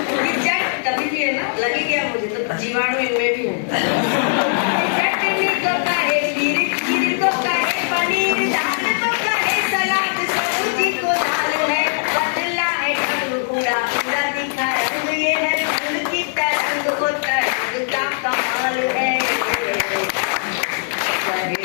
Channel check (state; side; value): silent; right; digital silence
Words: कभी भी है ना, लगे क्या मुझे तो जीवाणु इनमें भी है। चटनी को कहे खीर खीर को कहे पनीर दाल को कहे सलाद सब्जी को दाल है। बदला है ढंग पूरा पूरा दिखा रंग ये है फूल की तरंग को तरंग का कमाल है।